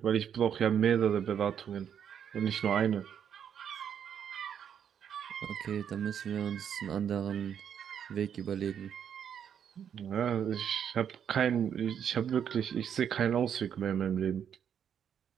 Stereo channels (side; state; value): left; quieter; 8.5 dB